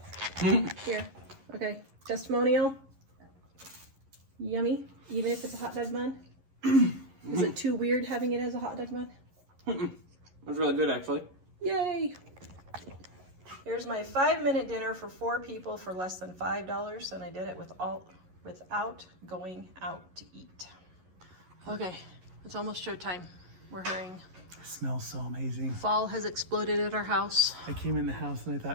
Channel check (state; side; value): late; left; 11 ms